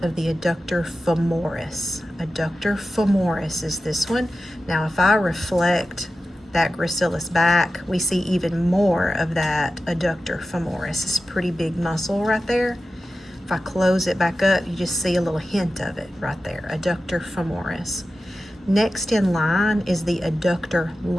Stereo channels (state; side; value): normal; both; correlation 0.93